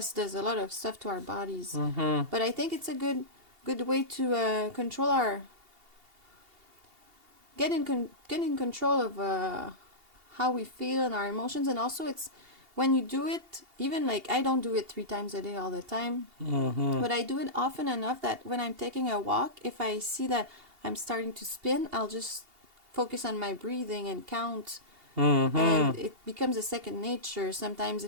does a lot of stuff to our bodies. But I think it's a good way to control our get in control of how we feel and our emotions. And also it's when you do it, even like I don't do it 3 times a day all the time, but I do it often enough that when I'm taking a walk, if I see that I'm starting to spin, I'll just focus on my breathing and count, and it becomes a second nature. Sometimes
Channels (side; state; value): left; late; 2.8 ms